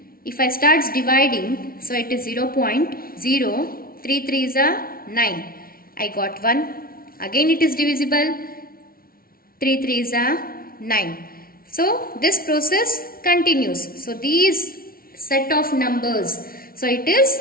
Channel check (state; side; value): late; right; 0.43 ms